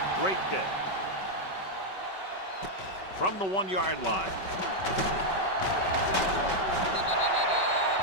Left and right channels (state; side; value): late; right; 5.3 ms